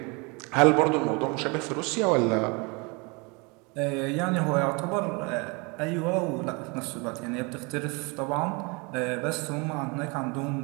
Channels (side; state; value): left; quieter; 29.3 dB